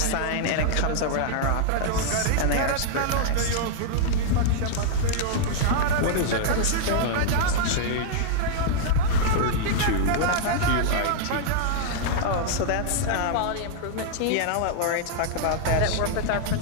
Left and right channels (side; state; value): both; different; correlation -0.01